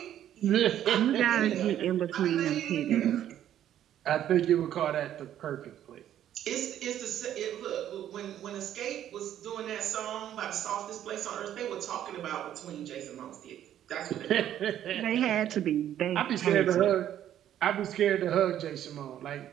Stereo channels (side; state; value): left; quieter; 11.1 dB